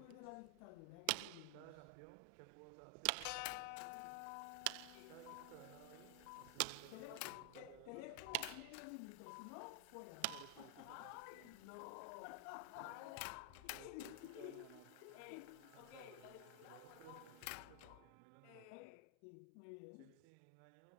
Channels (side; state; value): both; different; correlation 0.00